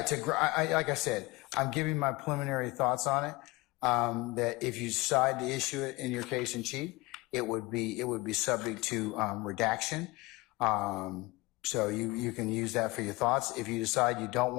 like I said, I'm giving my preliminary thoughts on it. That if you decide to issue it in your case in chief, it would be subject to redaction. So you can use that for your thoughts. If you decide you don't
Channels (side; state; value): right; quieter; 22.6 dB